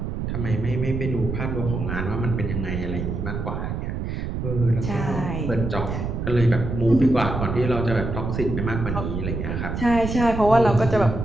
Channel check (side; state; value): right; noise; rumble, 3 dB below the sound